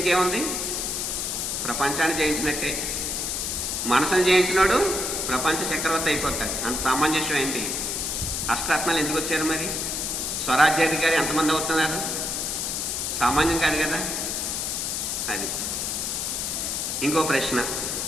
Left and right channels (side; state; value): left; noise; hiss, 1 dB below the sound